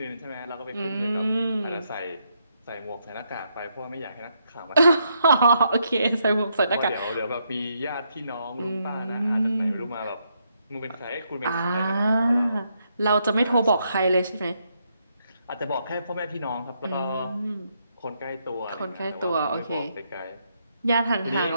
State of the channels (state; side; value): inverted; both; correlation -0.77